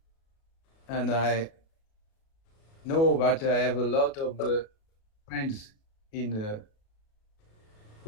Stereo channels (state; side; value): late; right; 37 ms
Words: And I know that I have a lot of friends in